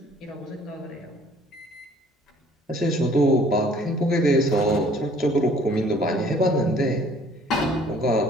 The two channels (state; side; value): normal; both; correlation 0.56